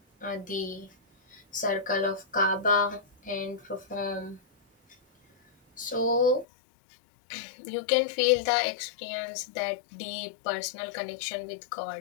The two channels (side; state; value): right; drops out; at 6.5 s